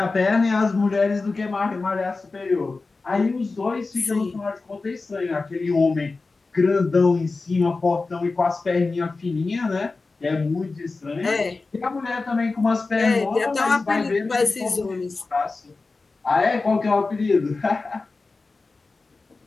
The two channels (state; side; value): quieter; right; 3.8 dB